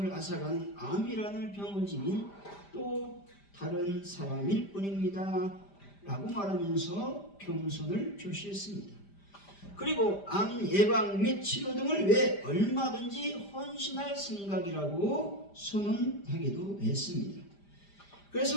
앗아가는 암이라는 병을 지닌 또 다른 사람일 뿐입니다. 라고 말하면서 겸손을 표시했습니다. 그리고 암 예방 및 치료 등을 위해 얼마든지 헌신할 생각이라고 선언하기도 했습니다.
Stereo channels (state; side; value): late; right; 5.0 ms